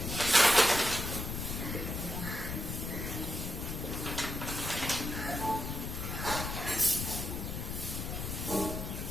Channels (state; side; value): noise; left; rumble, 4 dB below the sound